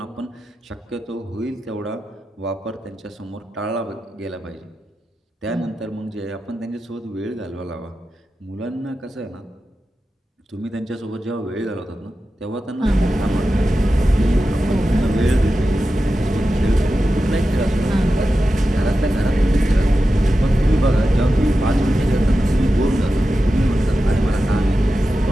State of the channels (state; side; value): normal; both; correlation 0.92